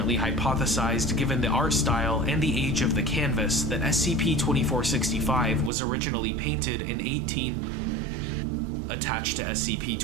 hypothesized, given the art style and the age of the canvas, that SCP-2465 was originally painted in 18. Attached to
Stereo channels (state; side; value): drops out; left; at 5.7 s